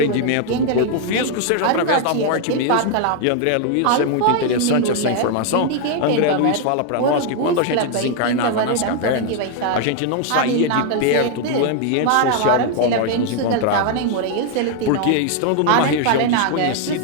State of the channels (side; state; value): both; different; correlation 0.00